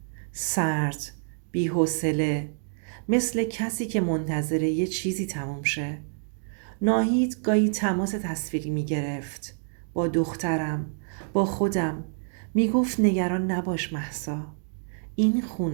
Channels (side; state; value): left; silent; digital silence